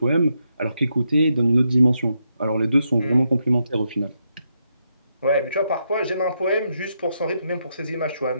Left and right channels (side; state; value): both; inverted; correlation -0.81